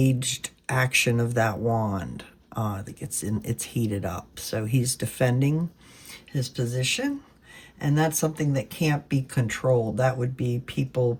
action of that wand. It's heated up. So he's defending his position, and that's something that can't be controlled. That would be people,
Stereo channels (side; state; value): both; identical; correlation 1.00